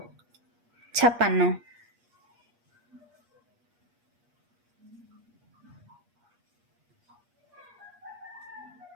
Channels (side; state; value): left; late; 8.4 ms